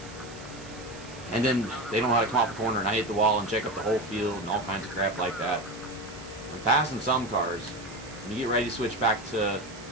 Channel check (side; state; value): right; noise; hiss, 18 dB below the sound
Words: And then they don't know how to come off the corner and I hit the wall and check up the whole field and all kinds of crap like that. I'm passing some cars. When you get ready to switch back to